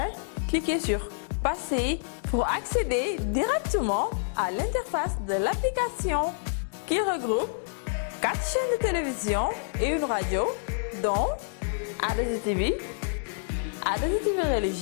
cliquez sur Passer pour accéder directement à l'interface de l'application qui regroupe 4 chaînes de télévision et une radio, dont a2i TV, a2i TV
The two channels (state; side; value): silent; right; digital silence